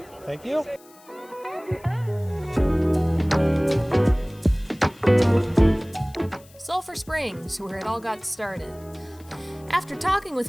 Thank you. Sulphur Springs, where it all got started. After talking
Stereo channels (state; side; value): noise; left; hiss, 26 dB below the sound